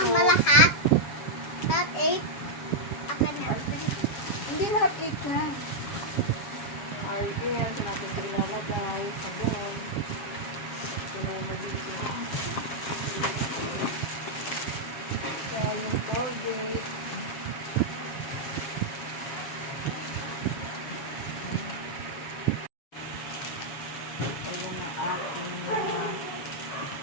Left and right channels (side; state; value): right; late; 7.3 ms